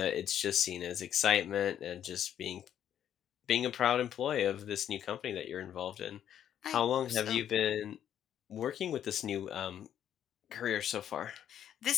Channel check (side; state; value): right; quieter; 10.0 dB